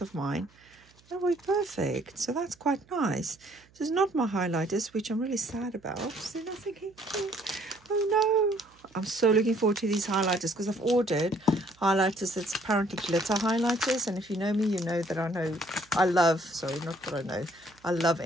of mine. That will be perfect. So that's quite nice. So it's not my highlighters, which I'm really sad about. So then I'm thinking, oh no. I'm so looking forward to these highlighters because I've ordered highlighters that's apparently glitter highlighters. And if you know me, you know that I love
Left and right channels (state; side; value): noise; right; hum, 30 dB below the sound